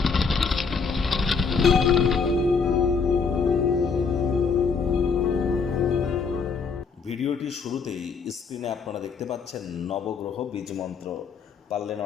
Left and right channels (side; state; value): right; quieter; 5.3 dB